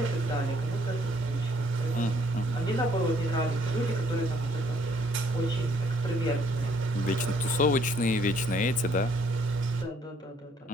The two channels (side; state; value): both; normal; correlation 0.65